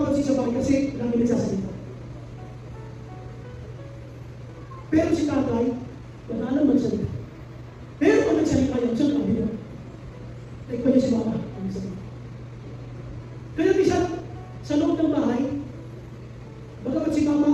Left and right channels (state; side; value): identical; both; correlation 1.00